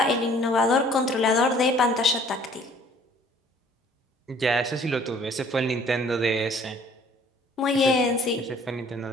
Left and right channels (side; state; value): both; normal; correlation 0.55